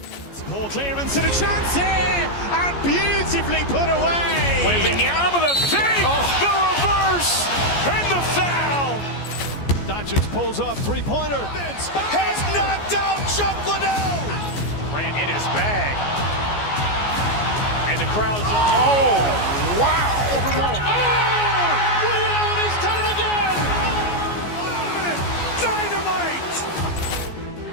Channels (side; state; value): right; late; 14 ms